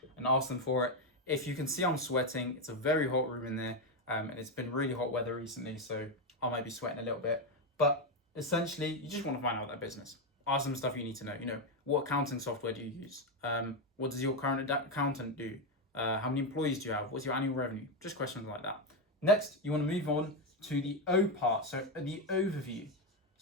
and ask them for it. If you can see I'm sweating, it's a very hot room in there. And it's been really hot weather recently, so I might be sweating a little bit. But essentially, you just want to find out their business. Ask them stuff you need to know. What accounting software do you use? What does your current accountant do? How many employees do you have? What's your annual revenue? Just questions like that. Next, you want to move on to the O part, so the overview.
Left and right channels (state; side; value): normal; both; correlation 0.08